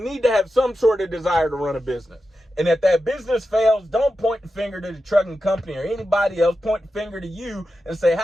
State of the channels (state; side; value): normal; both; correlation 0.90